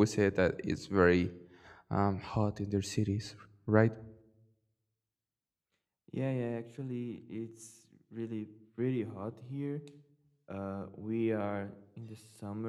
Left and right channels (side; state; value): both; identical; correlation 1.00